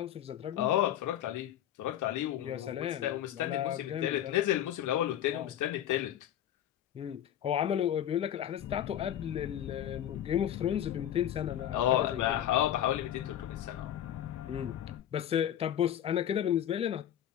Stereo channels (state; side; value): quieter; right; 11.0 dB